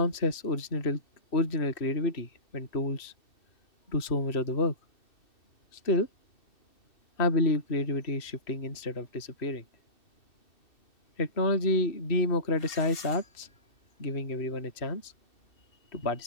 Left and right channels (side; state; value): right; late; 2.6 ms